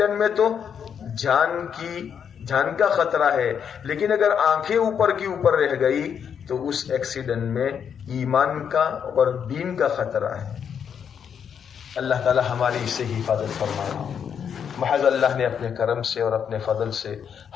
میں تو جان کا خطرہ ہے، لیکن اگر آنکھیں اوپر کی اوپر رہ گئی تو اس ایکسیڈنٹ میں ایمان کا اور دین کا خطرہ ہے۔ اللہ تعالی ہماری اس سے حفاظت فرمائے۔ محض اللہ نے اپنے کرم سے اور اپنے فضل سے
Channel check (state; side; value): quieter; right; 7.7 dB